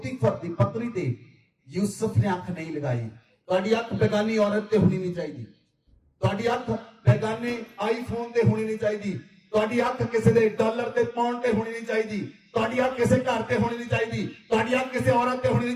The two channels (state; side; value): identical; both; correlation 1.00